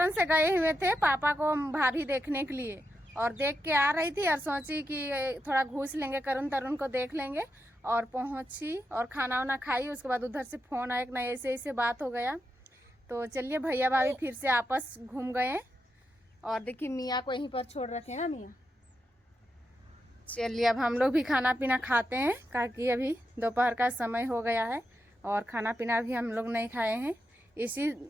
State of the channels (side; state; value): both; normal; correlation 0.86